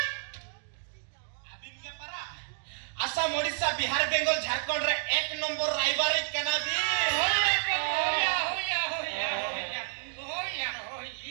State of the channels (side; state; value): left; silent; digital silence